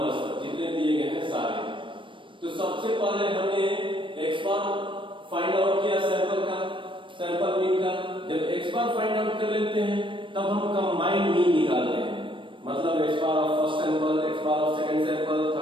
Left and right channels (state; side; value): late; left; 0.25 ms